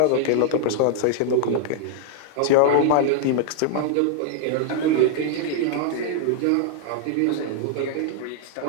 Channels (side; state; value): both; different; correlation -0.01